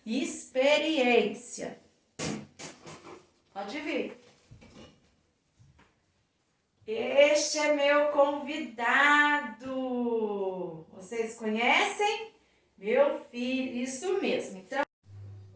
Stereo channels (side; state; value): both; identical; correlation 1.00